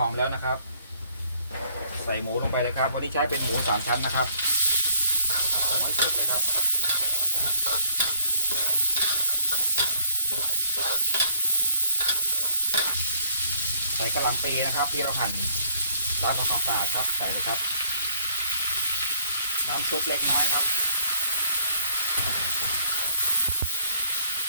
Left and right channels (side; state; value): both; inverted; correlation -0.65